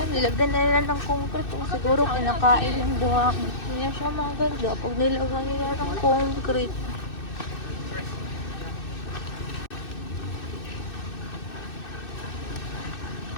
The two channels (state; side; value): late; right; 2.6 ms